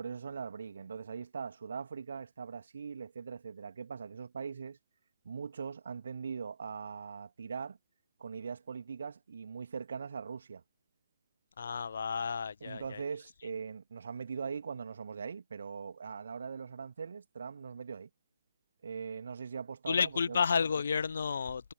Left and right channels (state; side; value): inverted; both; correlation -0.83